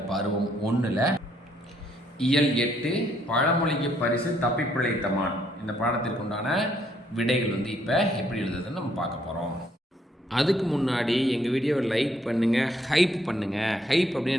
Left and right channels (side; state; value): both; normal; correlation 0.70